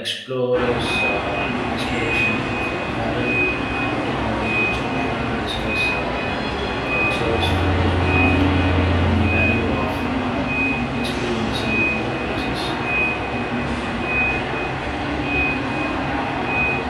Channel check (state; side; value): identical; both; correlation 1.00